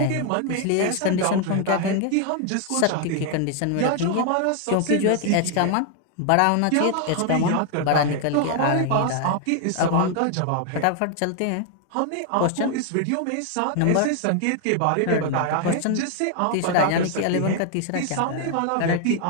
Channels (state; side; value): different; both; correlation 0.00